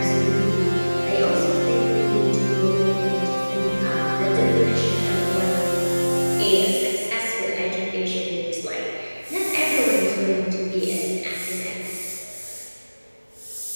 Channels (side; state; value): both; inverted; correlation -1.00